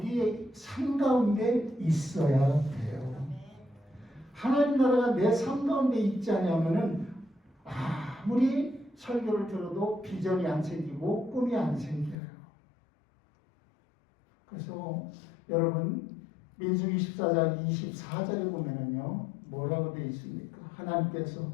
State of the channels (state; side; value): drops out; right; at 12.2 s